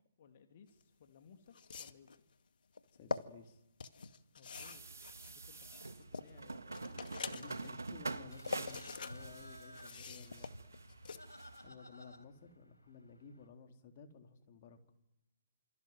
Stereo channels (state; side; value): inverted; both; correlation -0.80